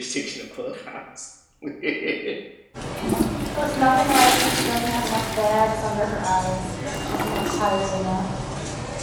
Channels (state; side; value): identical; both; correlation 1.00